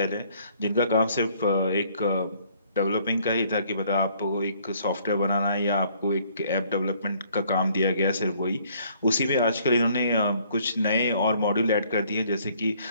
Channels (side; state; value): both; inverted; correlation -0.62